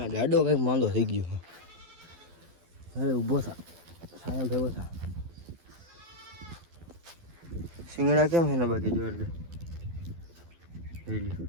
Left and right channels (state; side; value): late; left; 12 ms